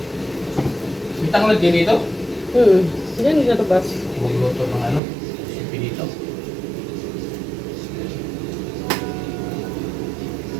Bitang lang din dito. Yan yung labas. Huwag luto ng ano, sipi dito.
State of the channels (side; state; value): left; drops out; at 5.0 s